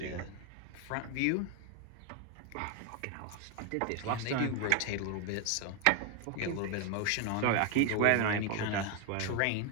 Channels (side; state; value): both; different; correlation 0.01